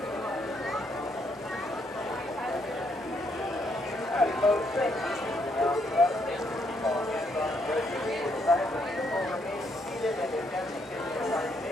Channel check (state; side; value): normal; both; correlation 0.73